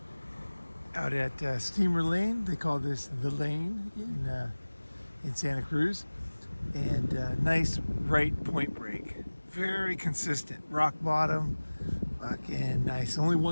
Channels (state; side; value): inverted; both; correlation -1.00